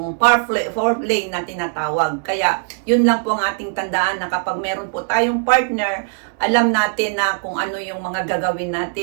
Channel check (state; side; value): silent; left; digital silence